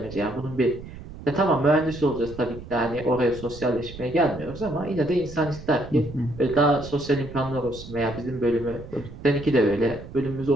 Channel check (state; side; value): noise; right; rumble, 14 dB below the sound